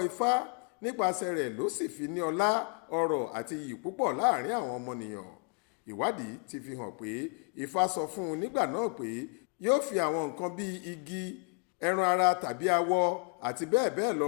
Ifá, nípasẹ̀ rẹ̀ ló sì fi ní ọlá, ọrọ̀ àti iyì púpọ̀ láàrin àwọn ọmọnìyàn. Ìwádìí ti fi hàn pé Ifá sọ fún un nígbà náà pé yóò fi àwọn nǹkan bíi igi, ẹran ara tàbí awọ àti bẹ́ẹ̀ bẹ́ẹ̀ lọ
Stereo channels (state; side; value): quieter; right; 33.4 dB